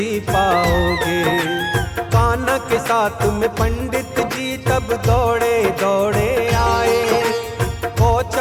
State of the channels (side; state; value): both; identical; correlation 1.00